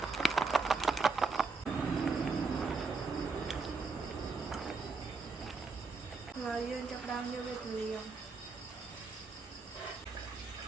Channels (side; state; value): left; quieter; 4.3 dB